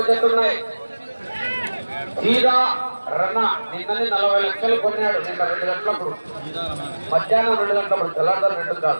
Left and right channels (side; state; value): both; inverted; correlation -1.00